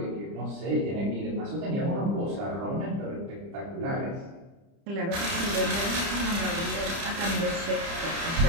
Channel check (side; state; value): left; late; 30 ms